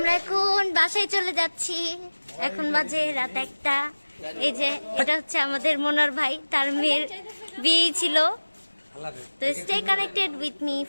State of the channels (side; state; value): both; inverted; correlation -1.00